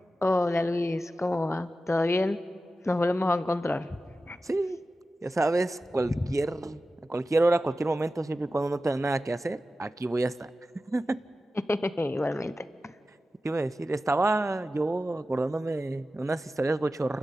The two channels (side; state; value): both; normal; correlation 0.93